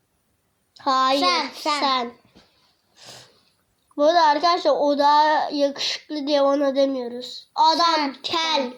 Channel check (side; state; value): both; identical; correlation 1.00